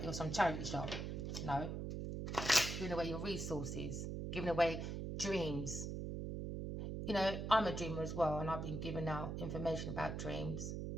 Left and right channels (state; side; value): noise; right; hum, 4 dB below the sound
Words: you're some charity shop. No. Giving away your resources. Giving away dreams. You know, I'm a dreamer as well, and I've been giving out information about dreams.